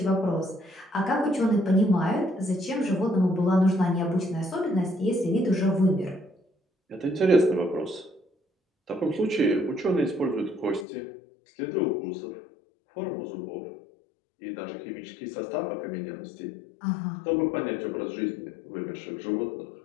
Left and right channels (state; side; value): drops out; right; at 10.9 s